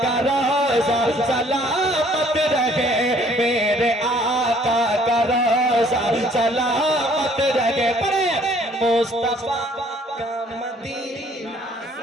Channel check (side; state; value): both; normal; correlation 0.60